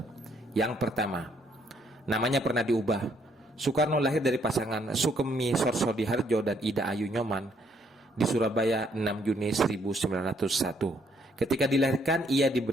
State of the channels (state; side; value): normal; both; correlation 0.69